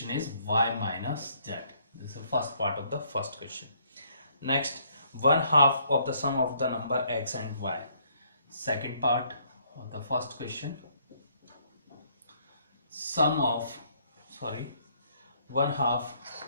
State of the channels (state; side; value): inverted; both; correlation -0.67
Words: is y minus z. This is the first part of the first question. Next, 1/2 of the sum of the number x and y. Second part of the first question. Sum of 1/2